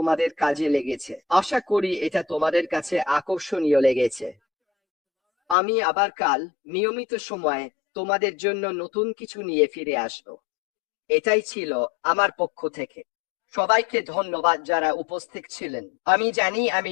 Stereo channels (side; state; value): right; drops out; at 5.6 s